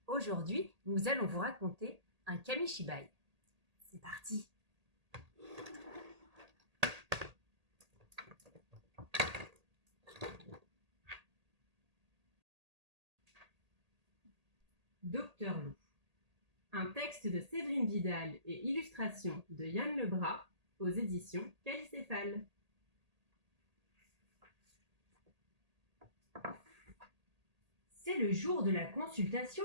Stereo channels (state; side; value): late; left; 1.8 ms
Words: Aujourd'hui, nous allons vous raconter un kamishibai. C'est parti. Docteur Loup. Un texte de Séverine Vidal et illustration de Yann Lebras aux éditions Calicéphale. C'est le jour de la